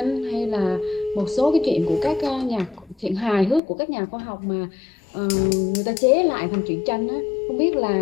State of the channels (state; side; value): drops out; right; at 3.6 s